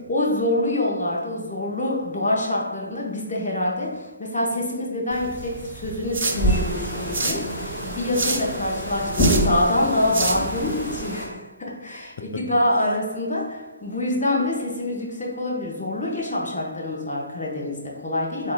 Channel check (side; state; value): both; inverted; correlation -0.50